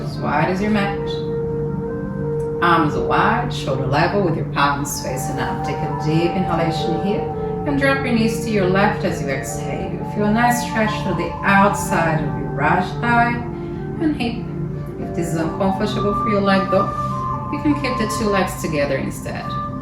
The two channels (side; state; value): both; identical; correlation 1.00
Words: as wide as your mat. Arms are wide, shoulder level with your palms facing up. Take a deep inhalation here and drop your knees to your left as you exhale. Feel a nice stretch through the outside of your right thigh and hip. If this is uncomfortable for your leg though, you can keep the two legs together instead.